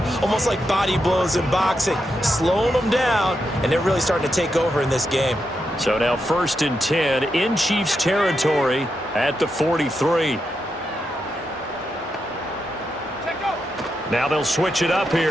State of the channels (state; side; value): normal; both; correlation 0.85